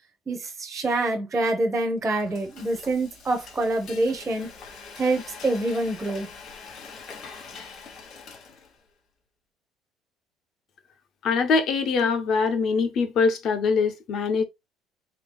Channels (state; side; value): normal; both; correlation 0.71